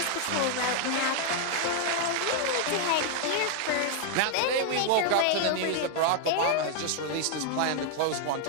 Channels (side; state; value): both; different; correlation 0.00